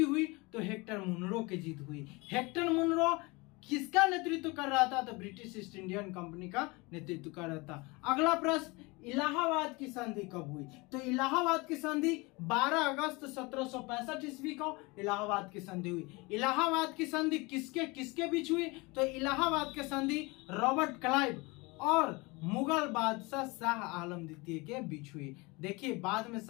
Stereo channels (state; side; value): quieter; right; 25.5 dB